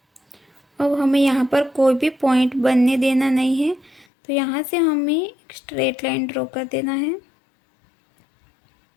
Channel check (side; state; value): right; drops out; at 4.0 s